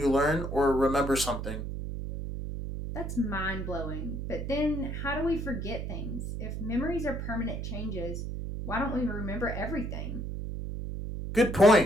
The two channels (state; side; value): noise; right; hum, 5 dB below the sound